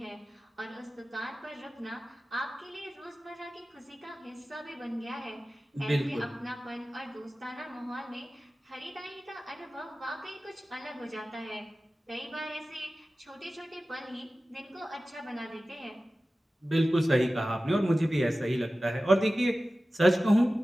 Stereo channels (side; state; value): both; normal; correlation 0.95